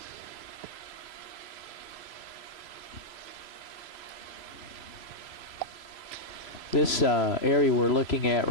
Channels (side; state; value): right; late; 3.0 ms